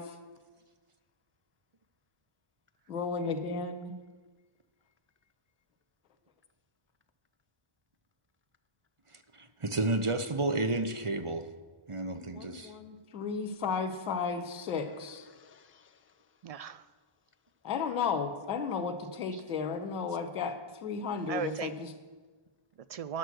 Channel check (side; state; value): left; late; 1.4 ms